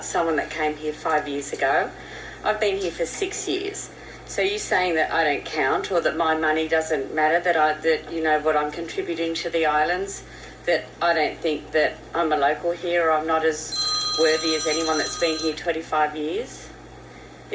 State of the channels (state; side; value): identical; both; correlation 1.00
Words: someone that came here 5 years ago. I've been here for 6 years. So you're saying that I don't count, or that my money doesn't matter, that you know what I'm contributing to the islands, that I don't think that I'm a local here, or I'm not as worthy as anyone that's been here 25 years?